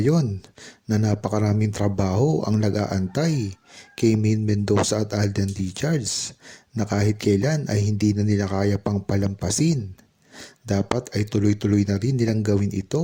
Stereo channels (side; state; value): both; identical; correlation 1.00